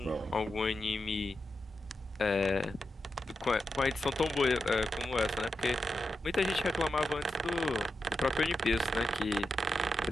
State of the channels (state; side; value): normal; both; correlation 0.89